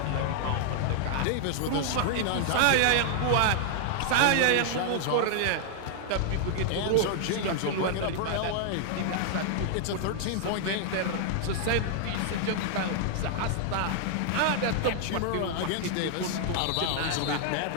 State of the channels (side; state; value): both; different; correlation 0.00